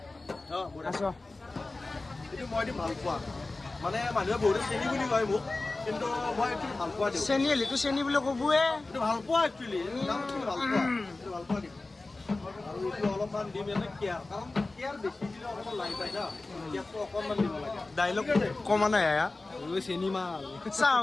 আছ এইটো মই ভাল পোৱা মানে মানুহে বহুত চেনি বুলি কয় মোক কিন্তু মই এইটো ভাল পোৱা দিওঁ চেনি হ'লেতো চেনি বুলি ক'বয়ে এইটো ভাল পোৱা একচুৱেলি ভাল পোৱা এইটো ভাল পোৱা দিম আৰু এইটো অলপমান দিম এনে কেয়াৰ কাৰণ কেয়াৰ বেছি দিলে অকণমান লাগি যায় না কেয়াৰটো অকণমান দিব লাগে ডাইলগ কমা নাই আয়া চেনি মাল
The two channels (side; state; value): right; quieter; 3.2 dB